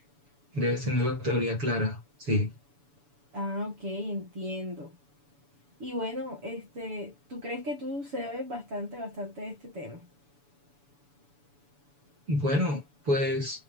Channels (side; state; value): left; late; 7.0 ms